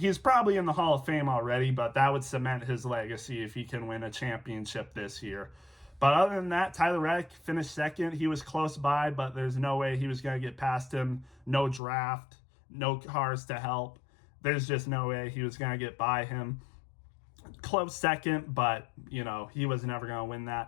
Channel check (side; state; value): right; drops out; at 11.8 s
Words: probably in the Hall of Fame already, but that would cement his legacy if he can win a championship this year. But other than that, Tyler Reddick finished second. He was close by, but there's no way he was going to get past him. No draft, no cars to help. There's just no way he was going to get by him. Close second, but, he was never going to win